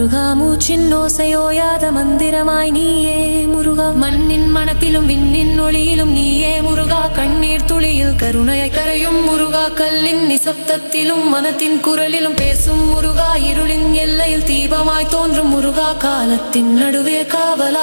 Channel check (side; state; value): both; inverted; correlation -1.00